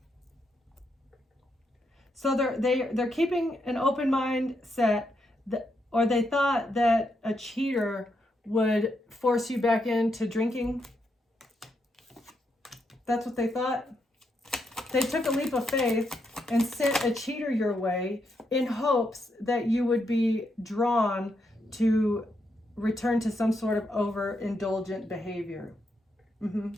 So they're keeping an open mindset, or they thought that a cheater would force you back into drinking. That's what they thought. They took a leap of faith and sent a cheater your way in hopes that you would be drawn to return to some sort of overindulgent behavior.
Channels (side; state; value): both; normal; correlation 0.80